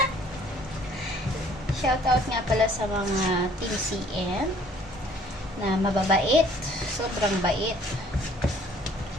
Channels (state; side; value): normal; both; correlation 0.57